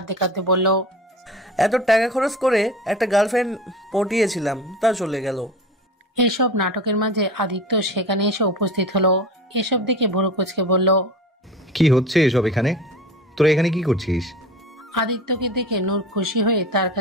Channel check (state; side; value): normal; both; correlation 0.34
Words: কাঁদতে বলল, এত টাকা খরচ করে একটা গার্লফ্রেন্ড পটিয়েছিলাম, তা চলে গেল। এসব নাটকের মাঝে আদিত্য সেখানে এসে উপস্থিত হলো। এসব দেখে ভুরু কুচকে বলল, কি হচ্ছে এসব এখানে? তোরা এখানে কি করছিস? আদিত্যকে দেখে নূর খুশি হয়ে তার